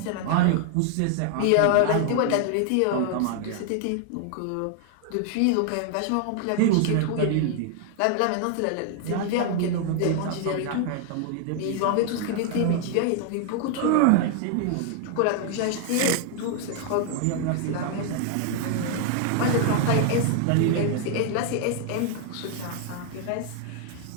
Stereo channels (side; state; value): both; different; correlation 0.00